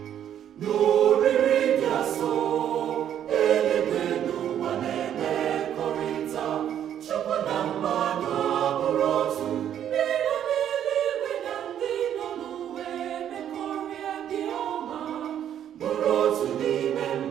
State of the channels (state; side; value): quieter; left; 10.1 dB